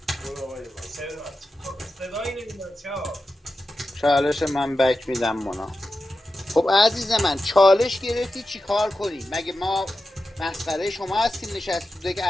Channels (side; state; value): both; normal; correlation 0.91